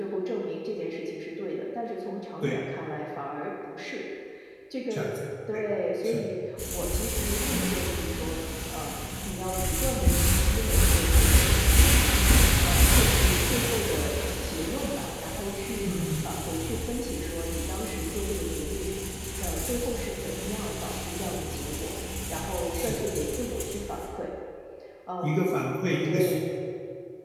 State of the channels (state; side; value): identical; both; correlation 1.00